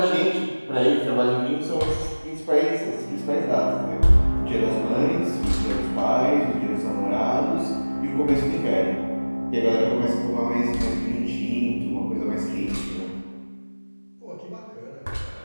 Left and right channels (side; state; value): both; inverted; correlation -1.00